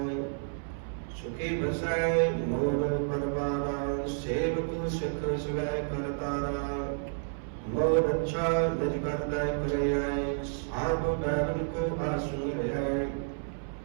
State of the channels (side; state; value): left; silent; 57 dB below the other